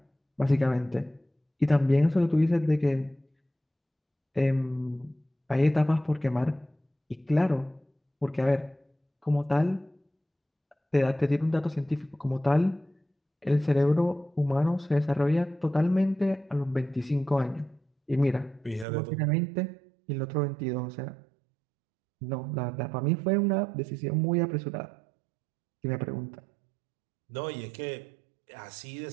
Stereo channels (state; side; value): drops out; left; at 18.9 s